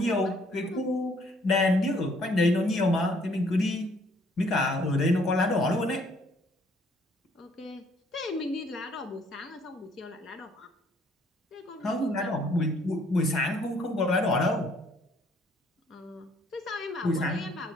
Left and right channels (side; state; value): both; normal; correlation 0.63